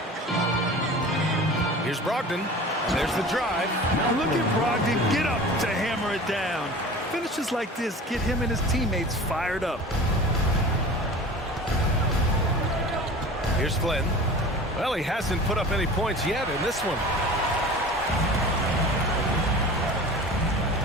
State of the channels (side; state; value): both; normal; correlation 0.38